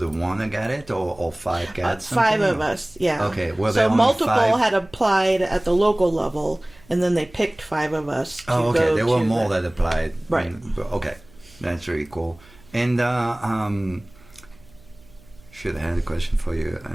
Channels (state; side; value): noise; right; hum, 26 dB below the sound